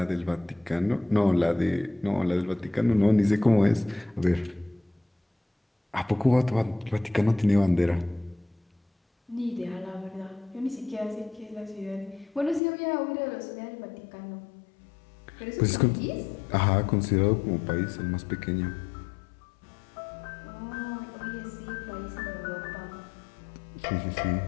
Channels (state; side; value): drops out; right; at 12.6 s